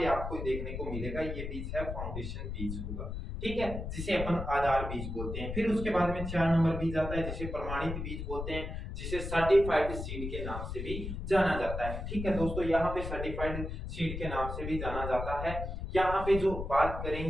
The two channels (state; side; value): noise; left; rumble, 6 dB below the sound